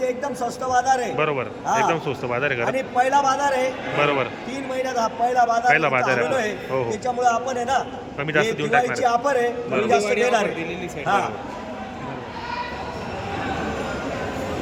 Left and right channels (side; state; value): both; identical; correlation 1.00